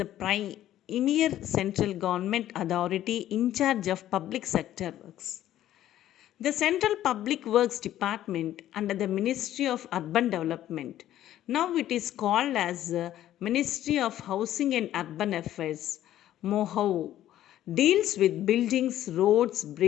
premier central government authority in charge of public sector works. The Central Public Works Department under the Ministry of Urban Development, now it is called as Ministry of Housing and Urban Affairs, MOHAU, deals with buildings, roads,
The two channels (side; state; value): right; quieter; 12.7 dB